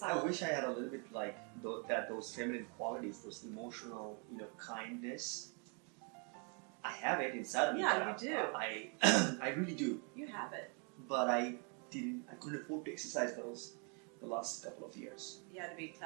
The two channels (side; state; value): left; quieter; 36.9 dB